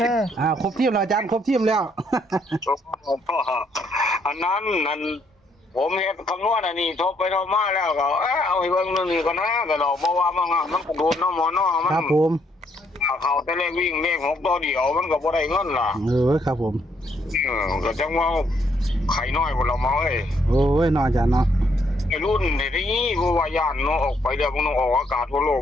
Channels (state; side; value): normal; both; correlation 0.71